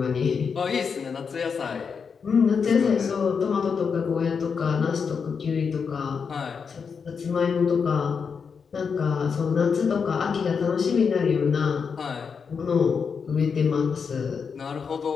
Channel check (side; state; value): right; quieter; 6.0 dB